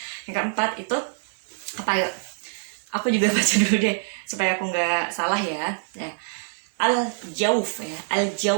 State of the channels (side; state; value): left; silent; digital silence